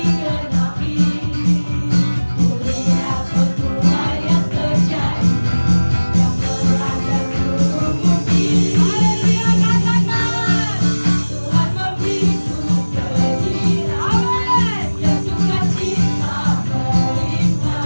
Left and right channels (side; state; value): both; inverted; correlation -1.00